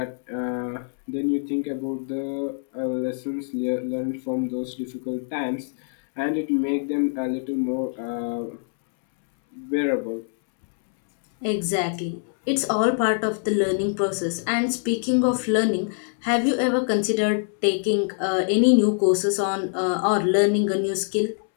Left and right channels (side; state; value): right; silent; 62 dB below the other